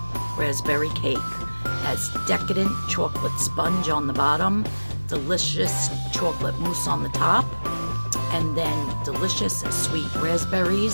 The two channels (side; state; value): both; inverted; correlation -1.00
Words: raspberry cake. Has decadent chocolate sponge on the bottom, delicious chocolate mousse on the top, and then delicious sweet